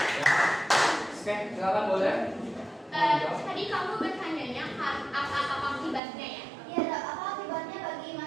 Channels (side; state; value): left; drops out; at 6.0 s